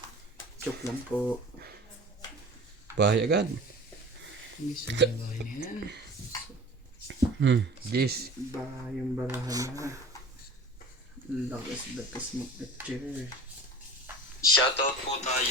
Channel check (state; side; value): normal; both; correlation 0.41